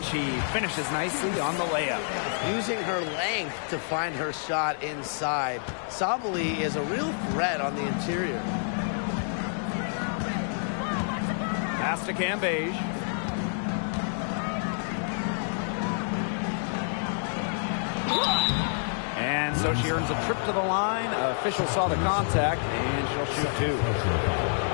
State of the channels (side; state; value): right; silent; digital silence